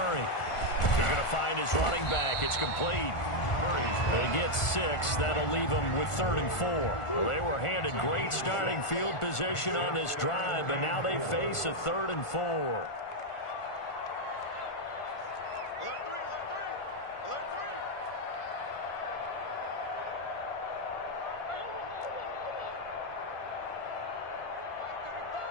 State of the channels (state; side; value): late; right; 1.4 ms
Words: He's going to find his running back. It's complete. They get 6. That'll leave them with 3rd and 4. Well, they were handed great starting field position on this drive, but now they face a 3rd and 4.